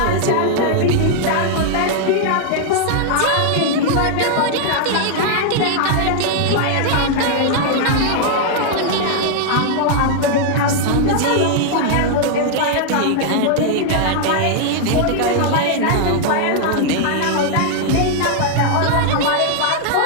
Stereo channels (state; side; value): different; both; correlation -0.01